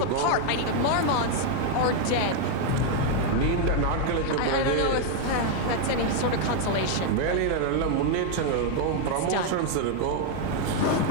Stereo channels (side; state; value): both; different; correlation 0.00